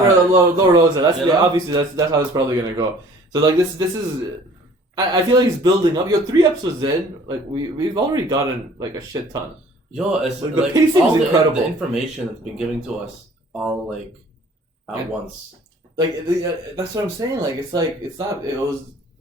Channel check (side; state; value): both; normal; correlation 0.52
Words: Lord Rosa. Obviously that's how it's probably gonna go. So like this is. I feel like he's building up. 3 episodes in, like we've already gotten like a shit ton. It's like the pacing is incredible. The information that's been given to us all like at once. Like that's what I'm saying. Like it's not. It was